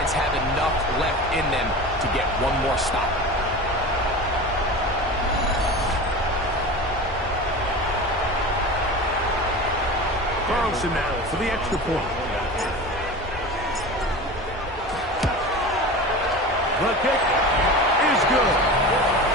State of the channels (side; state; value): both; normal; correlation 0.31